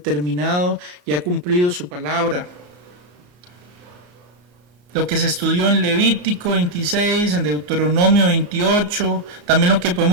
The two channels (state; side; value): late; left; 34 ms